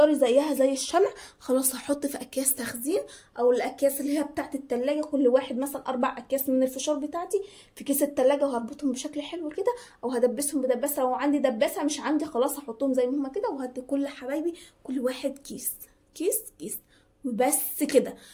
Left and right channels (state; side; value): identical; both; correlation 1.00